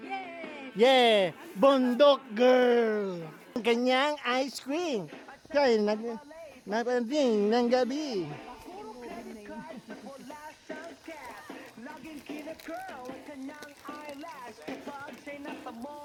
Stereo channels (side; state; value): both; identical; correlation 1.00